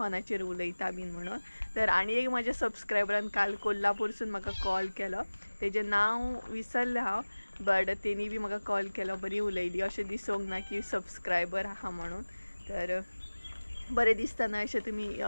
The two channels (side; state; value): both; inverted; correlation -1.00